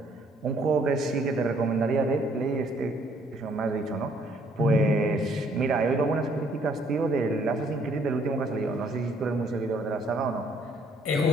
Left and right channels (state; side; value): normal; both; correlation 0.64